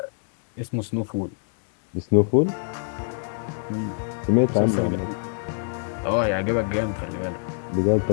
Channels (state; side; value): silent; right; digital silence